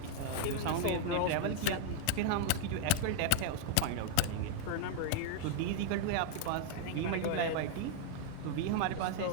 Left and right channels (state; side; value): different; both; correlation 0.00